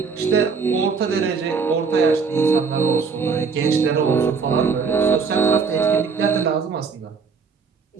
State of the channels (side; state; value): left; quieter; 5.3 dB